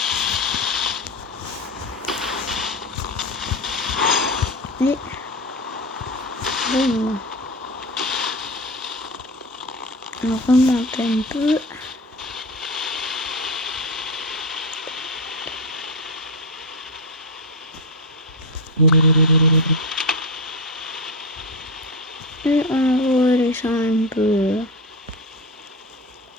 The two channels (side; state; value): both; normal; correlation 0.18